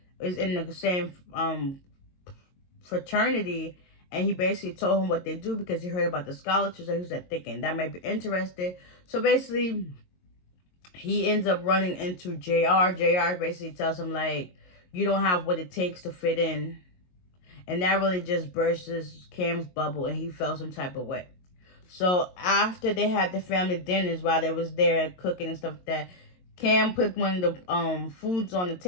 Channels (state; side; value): late; right; 22 ms